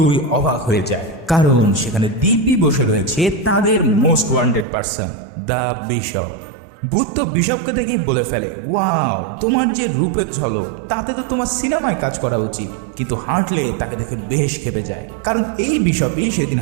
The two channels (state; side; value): drops out; left; at 4.7 s